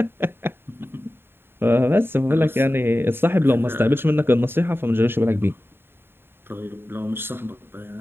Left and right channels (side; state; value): left; late; 0.11 ms